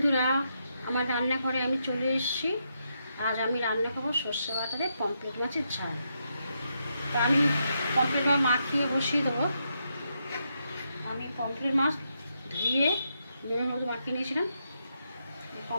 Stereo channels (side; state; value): both; inverted; correlation -0.81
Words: আমার রান্নাঘরে আমি চলে এসেছি। আজ আমি রান্না করবো সর্ষে বাটা দিয়ে পমফ্রেট মাছের ঝাল। তা আমি পমফ্রেট মাছ মাখিয়ে বসিয়ে দেবো। আমি পমফ্রেট মাছ ধুয়ে নুনের মধ্যে মাখিয়ে নিয়েছিলাম।